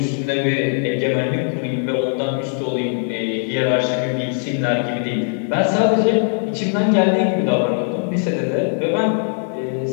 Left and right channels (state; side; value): silent; right; 64 dB below the other